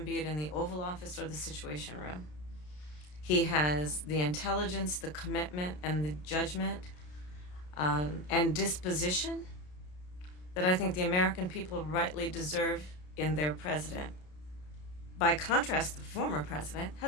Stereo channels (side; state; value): right; late; 33 ms